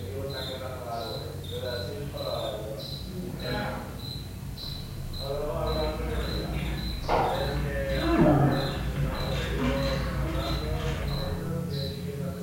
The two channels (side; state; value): both; identical; correlation 1.00